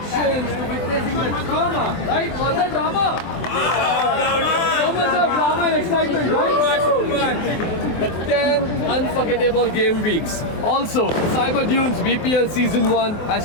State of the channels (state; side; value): late; right; 24 ms